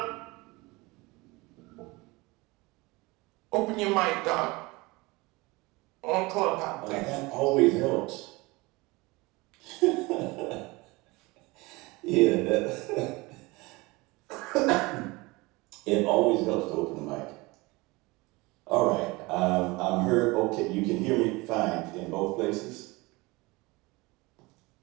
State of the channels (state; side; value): quieter; left; 23.4 dB